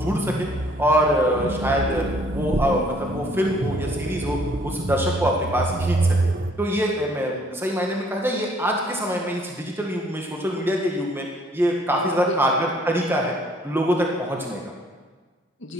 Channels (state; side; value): normal; both; correlation 0.61